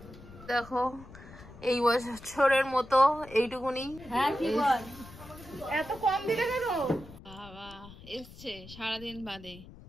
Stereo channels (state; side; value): noise; left; rumble, 18 dB below the sound